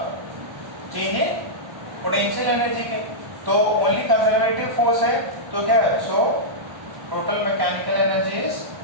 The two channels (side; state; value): left; late; 1.1 ms